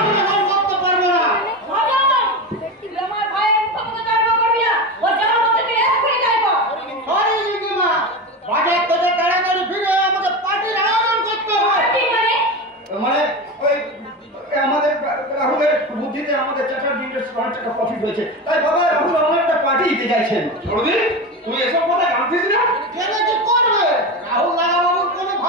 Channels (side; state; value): both; normal; correlation 0.22